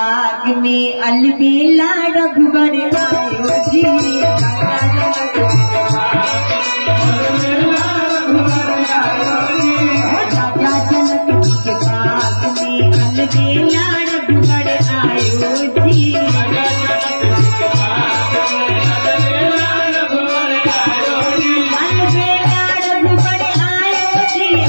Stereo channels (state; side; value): inverted; both; correlation -1.00